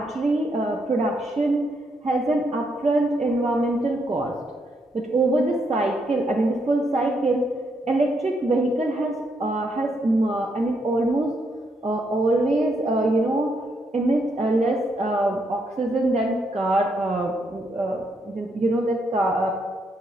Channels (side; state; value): both; normal; correlation 0.77